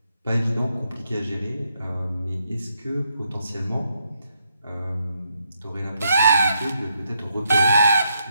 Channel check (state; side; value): inverted; both; correlation -0.78